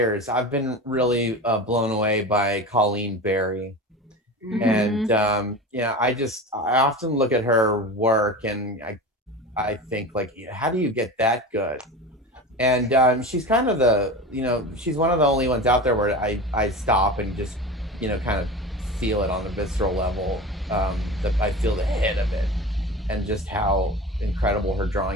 I've been really blown away by Colleen Barry, and I often look at her work and I think, like, how do you get that good? And she's kind of she's one of the only ones out there where I stop and just kind of feel it on a visceral level. That I feel the hit of it, and just how incredible her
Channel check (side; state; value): both; normal; correlation 0.30